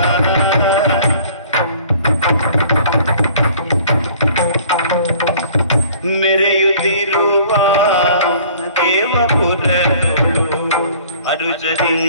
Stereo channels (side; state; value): both; inverted; correlation -0.52